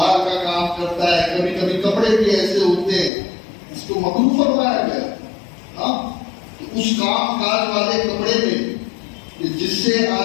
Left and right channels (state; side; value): drops out; right; at 3.1 s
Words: کا کام کرتا ہے, کبھی کبھی کپڑے بھی ایسے ہوتے ہیں, اس کو مکروہ فرمایا گیا. ہاں اس کام کاج والے کپڑے میں جس سے